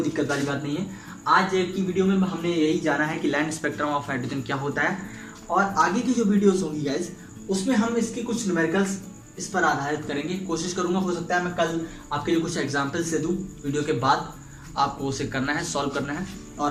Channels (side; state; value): both; identical; correlation 1.00